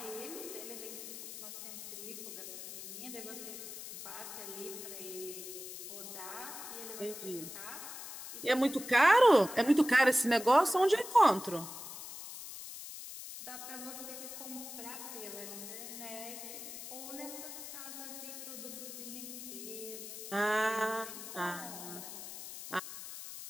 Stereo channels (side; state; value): left; noise; hiss, 10 dB below the sound